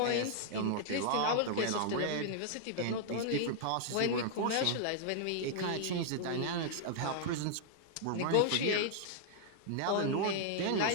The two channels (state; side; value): different; both; correlation 0.00